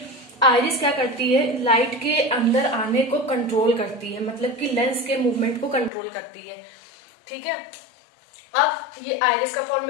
आइरिस क्या करती है, लाइट के अंदर आने को कंट्रोल करती है, मतलब कि लेंस के मूवमेंट को कंट्रोल करती है। ठीक है। अब ये आइरिस का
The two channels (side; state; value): right; drops out; at 5.9 s